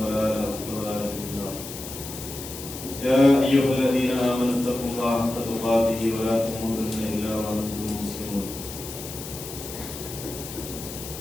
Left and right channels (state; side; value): noise; left; hiss, 10 dB below the sound